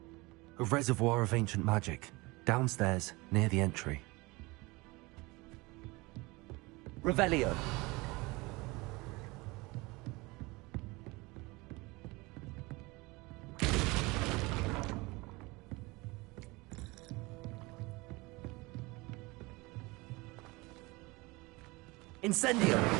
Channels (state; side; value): quieter; left; 23.8 dB